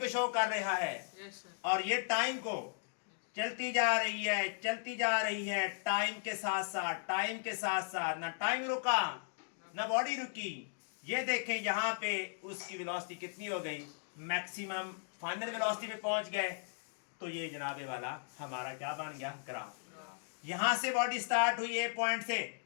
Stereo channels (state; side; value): silent; right; digital silence